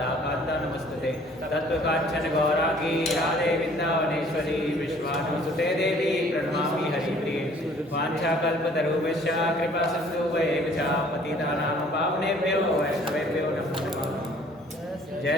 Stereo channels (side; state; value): both; normal; correlation 0.56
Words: नमस्तुते तत्त्वकाञ्चन गौरांगी राधे वृन्दावनेश्वरी विश्वानुसुते देवी प्रणमामि हरिप्रिये वाञ्छाकल्पतरुभ्यश्च कृपा सिन्धुभ्येव च पतितानां पावनेभ्यो वैष्णवेभ्यो नमो नमः। जय